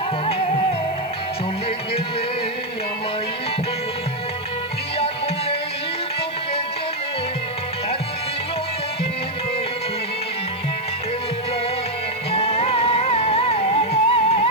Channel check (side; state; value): right; noise; hiss, 28 dB below the sound